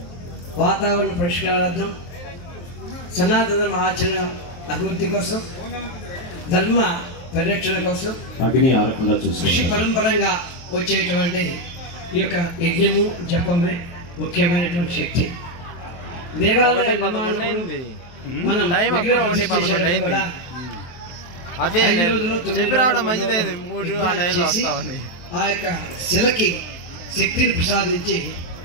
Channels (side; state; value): right; late; 23 ms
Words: వాతావరణ పరిష్కారార్థం, సనాతన ఆచరణ అభివృద్ధి కోసం, ధర్మ పరిరక్షణ కోసం కృషి పరంపరంగా వచ్చేటువంటి ఈ యొక్క యజ్ఞము జపమే ముఖ్యమైనటువంటి శక్తి. దేవాలయ మనం అదే చెప్పి రావడం మంచిదైంది. 3 ఆ టైంలో వస్తామని ఆ యొక్క శిలకి శక్తిని ప్రసాదించి